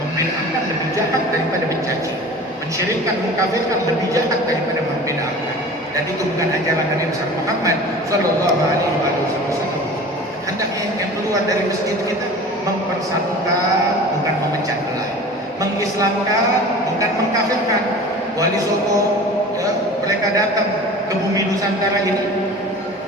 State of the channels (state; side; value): normal; both; correlation 0.39